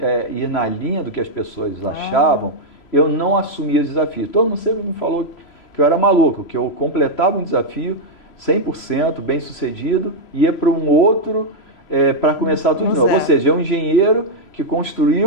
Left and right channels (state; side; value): late; right; 3.0 ms